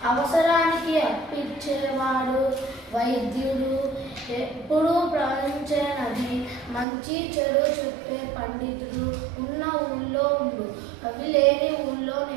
అవసరానికి అప్పిచ్చేవాడు వైద్యుడు, ఎప్పుడు ప్రవహించేనది మంచి చెడు చెప్పే పండితుడు ఉన్న ఊళ్ళో ఉండు, అవి లేని ఊళ్ళో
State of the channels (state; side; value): drops out; left; at 6.9 s